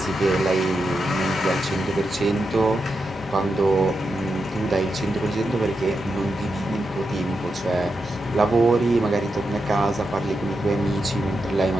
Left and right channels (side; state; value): both; normal; correlation 0.87